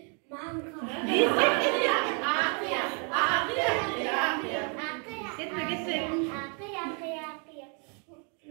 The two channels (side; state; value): left; quieter; 37.8 dB